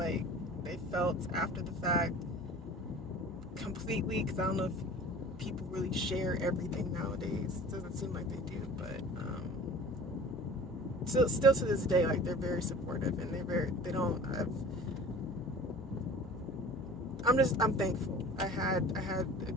they felt after the fact completely, because I don't know if people really share everything nowadays. It doesn't seem like they do, but still to this day, like, they're very supportive, and I'm thankful. I had a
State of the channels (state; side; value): normal; both; correlation 0.42